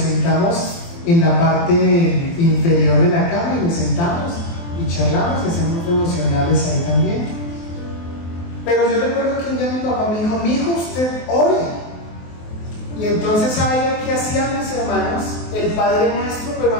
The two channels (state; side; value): late; right; 23 ms